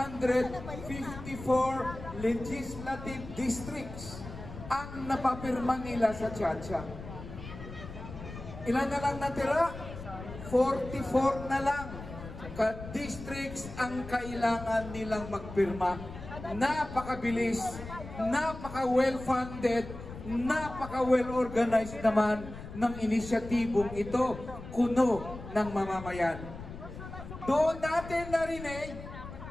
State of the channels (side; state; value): left; noise; rumble, 12 dB below the sound